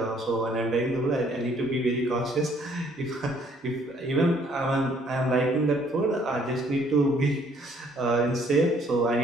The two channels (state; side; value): normal; both; correlation 0.63